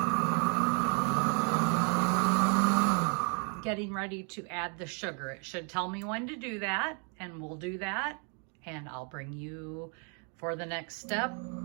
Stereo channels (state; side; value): quieter; left; 39.4 dB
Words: getting ready to add the sugar. It should tell me when to do that, and we'll do that, and I'll bring you for the next step.